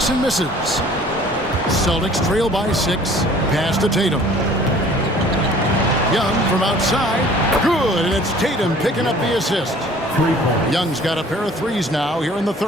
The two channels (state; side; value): normal; both; correlation 0.51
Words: misses. Celtics trail by 6. Pass to Tatum. Young from outside. Good, and it's Tatum picking up the assist. Young's got a pair of threes now here in the